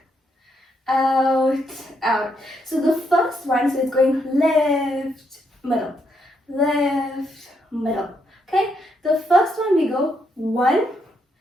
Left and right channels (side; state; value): both; normal; correlation 0.77